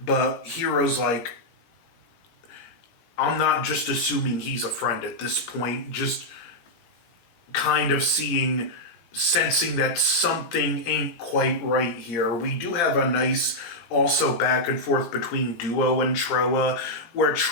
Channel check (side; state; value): right; late; 18 ms